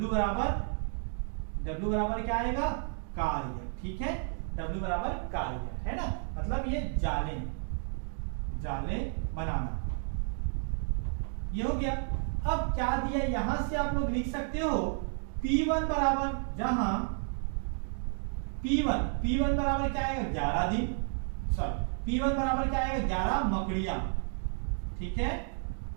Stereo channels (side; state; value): left; silent; 57 dB below the other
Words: बराबर क्या आएगा कार्य, ठीक है, W बराबर कार्य है ना, मतलब ये जाले बनाना, ये हो गया। अब क्या दिया यहां से आप लोग लिख सकते हो P1 बराबर, जहां P1 बराबर क्या आएगा 11 दिन, सॉरी P1 बराबर क्या आएगा 11 मकड़ियां, ठीक है।